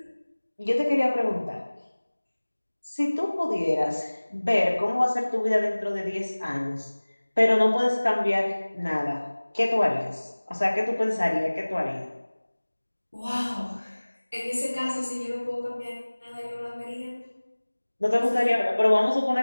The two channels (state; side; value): inverted; both; correlation -1.00